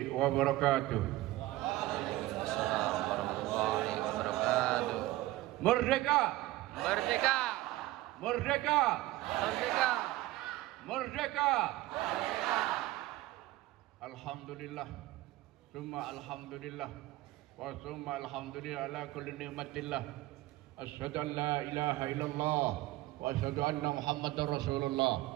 wabarakatuh. Waalaikumsalam warahmatullahi wabarakatuh. Merdeka! Merdeka! Merdeka! Merdeka! Merdeka! Alhamdulillah, summa alhamdulillah, wa summa alhamdulillah ala kulli ni'matillah. Asyhadu an la ilaha illallah wa asyhadu anna Muhammadar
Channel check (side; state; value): left; quieter; 17.5 dB